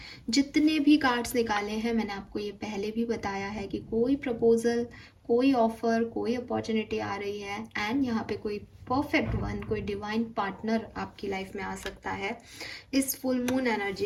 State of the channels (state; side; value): identical; both; correlation 1.00